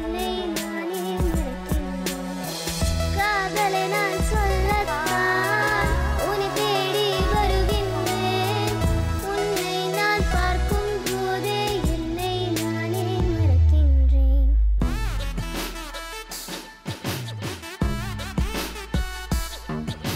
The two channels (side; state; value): both; identical; correlation 1.00